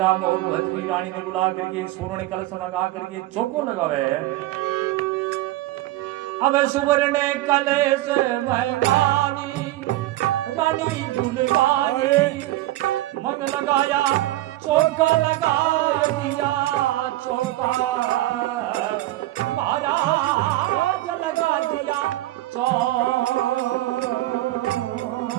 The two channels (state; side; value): quieter; left; 16.3 dB